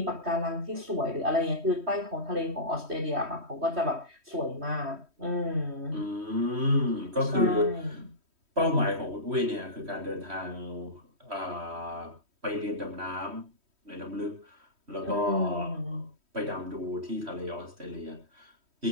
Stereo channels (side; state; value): left; late; 3.1 ms